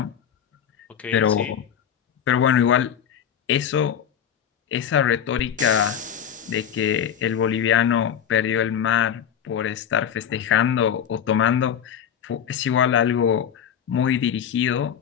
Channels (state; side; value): quieter; right; 8.7 dB